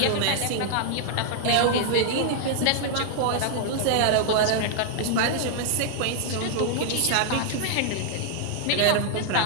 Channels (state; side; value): different; both; correlation 0.00